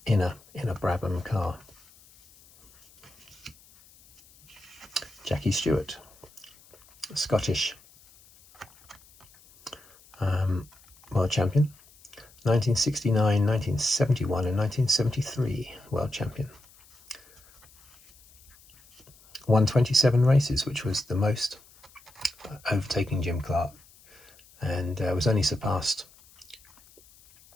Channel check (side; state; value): left; noise; hiss, 26 dB below the sound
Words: in a Brabham car. Jackie Stewart, Scottish world champion, 1969, 1971 and 1973 world champion. Won 27 races, which was the most, overtaking Jim Clark, and was only surpassed,